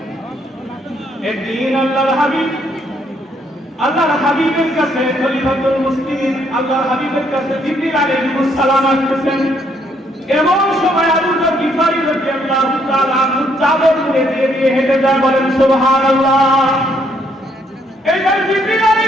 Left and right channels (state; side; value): normal; both; correlation 0.70